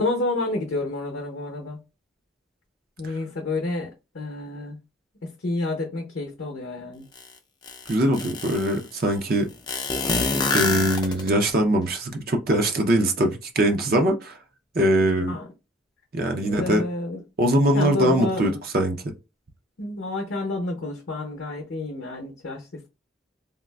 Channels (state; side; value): normal; both; correlation 0.50